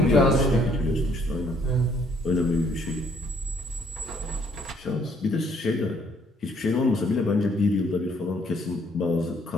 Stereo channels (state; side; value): normal; both; correlation 0.65